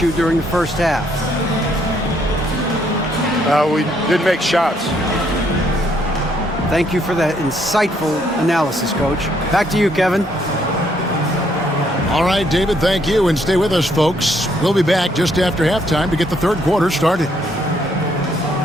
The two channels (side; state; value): both; normal; correlation 0.70